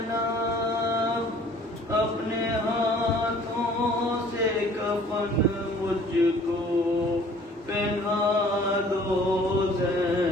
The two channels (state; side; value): normal; both; correlation 0.53